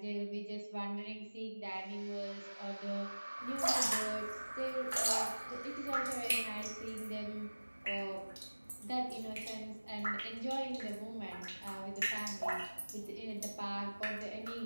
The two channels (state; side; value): inverted; both; correlation -1.00